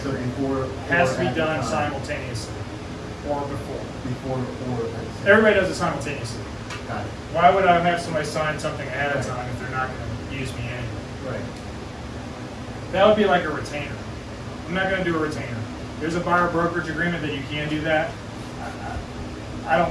So agreement. before. Has to or be at the done time? simultaneously or before. Before or at the same. Everybody does it simultaneously. Got it. Why would I have somebody sign something ahead of time if they're not going to use me anyway? Right. That would be like a retainer. I'm not going to do a retainer. There's a buyer brokerage agreement that you can do that. I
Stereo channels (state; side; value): identical; both; correlation 1.00